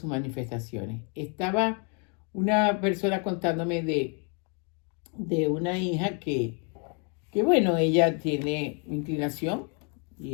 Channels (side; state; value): right; quieter; 37.5 dB